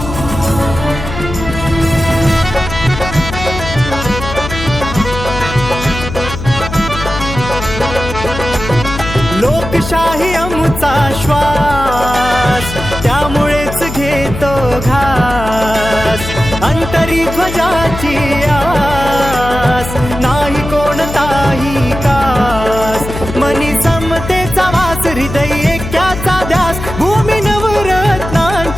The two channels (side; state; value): left; noise; hum, 8 dB below the sound